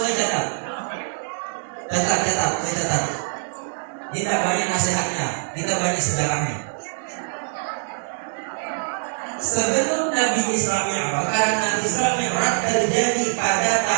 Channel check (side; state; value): left; silent; digital silence